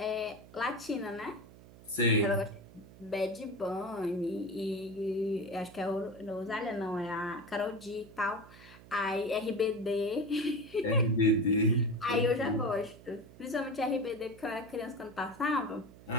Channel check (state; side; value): noise; right; hum, 20 dB below the sound